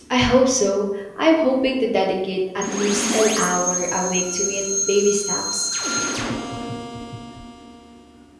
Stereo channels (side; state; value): both; identical; correlation 1.00